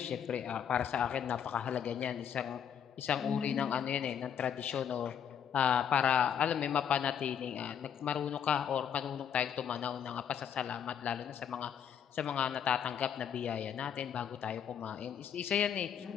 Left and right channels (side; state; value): right; quieter; 8.5 dB